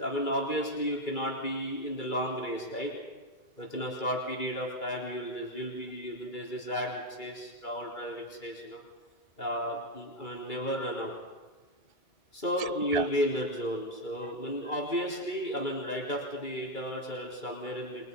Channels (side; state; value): right; late; 2.3 ms